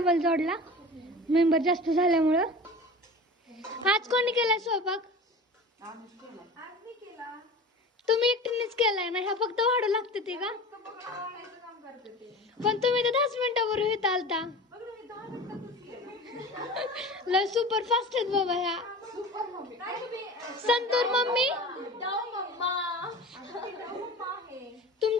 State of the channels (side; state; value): both; normal; correlation 0.35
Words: जोडला मेंबर जास्त झाल्यामुळं. आज कोणी केला स्वयंपाक? तुम्ही एकटीनेच केलाय ना? ह्या फक्त वाढू लागते ते का? पण तुम्ही तर 10 मिनिटावर येत आलता. लय सुपर फास्ट आहेत बाबा ह्या. संतूर मम्मी